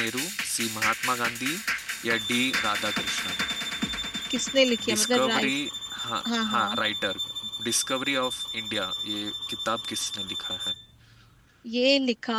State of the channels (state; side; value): identical; both; correlation 1.00